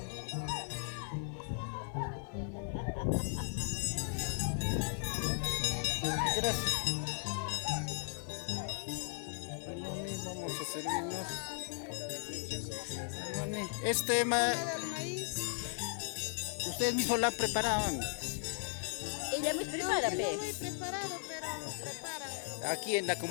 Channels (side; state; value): right; silent; 53 dB below the other